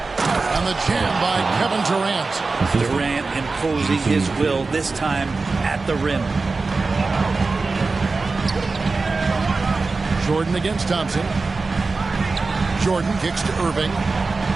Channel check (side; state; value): left; quieter; 3.9 dB